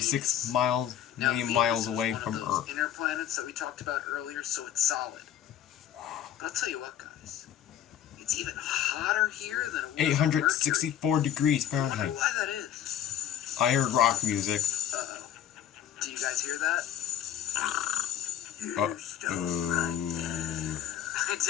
Venus. million Now, Venus miles is away one from of those Earth. inner planets that we talked about earlier, so it's solid. But I'll tell you what, guys. It's even hotter here than it was on Mercury. 864 degrees I wonder Fahrenheit. why that is. I heard rock music. Uh-oh. Do you guys hear that? Uh-oh. I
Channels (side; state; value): right; quieter; 10.5 dB